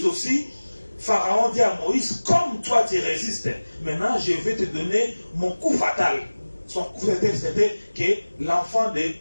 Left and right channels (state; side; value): inverted; both; correlation -1.00